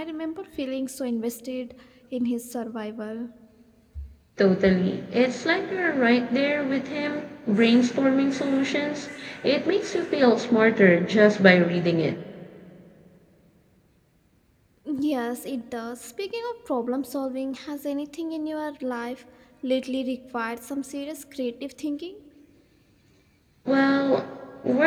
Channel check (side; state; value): both; identical; correlation 1.00